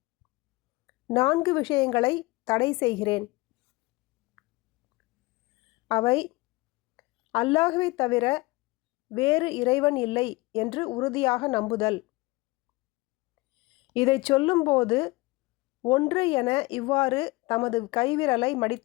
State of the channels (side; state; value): right; quieter; 22.5 dB